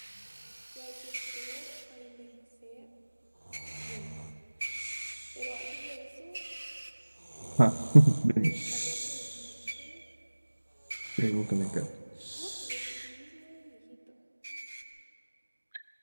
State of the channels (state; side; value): inverted; both; correlation -1.00